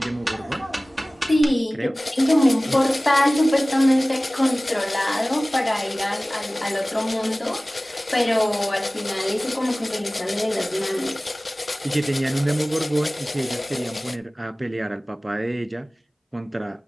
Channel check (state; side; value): normal; both; correlation 0.98